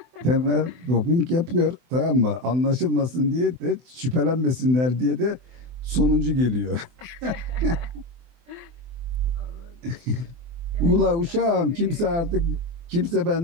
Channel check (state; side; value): late; left; 24 ms